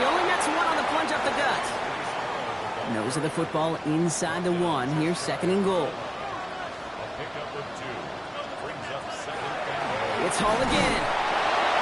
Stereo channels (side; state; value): both; identical; correlation 1.00